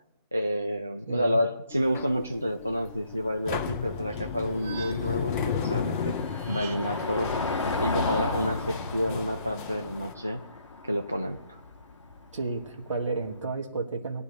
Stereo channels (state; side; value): inverted; both; correlation -0.71